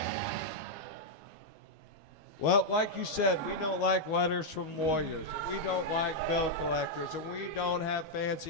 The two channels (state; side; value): late; right; 12 ms